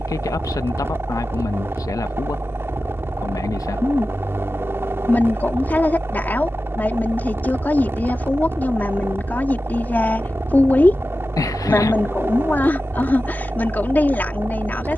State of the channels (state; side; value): normal; both; correlation 0.94